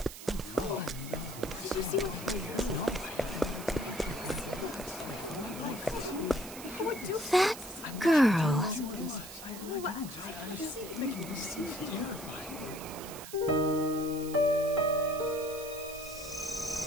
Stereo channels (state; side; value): noise; right; hiss, 13 dB below the sound